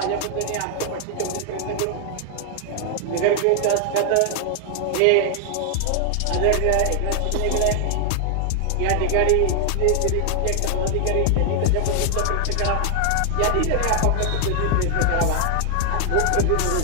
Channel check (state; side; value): different; both; correlation 0.00